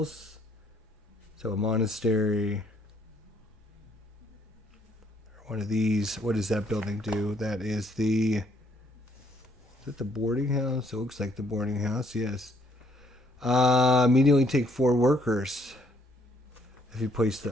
So a monastery, or one of these. What does that building do? That is is it the boarding house? It looks like the boarding house, yes. Immediately take 4 workers if you place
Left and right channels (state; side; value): normal; both; correlation 0.67